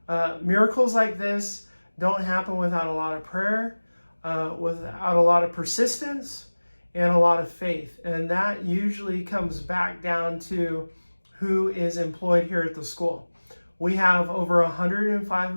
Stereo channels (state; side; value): inverted; both; correlation -1.00